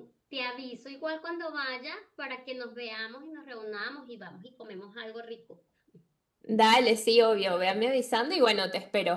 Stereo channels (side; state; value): both; identical; correlation 1.00